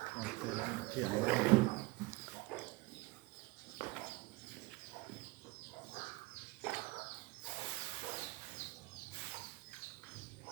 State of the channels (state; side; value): quieter; left; 22.9 dB